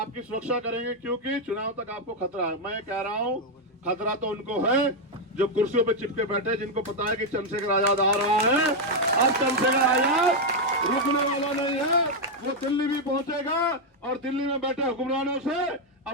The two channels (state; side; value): normal; both; correlation 0.01